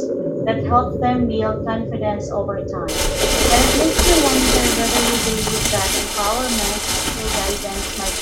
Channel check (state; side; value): identical; both; correlation 1.00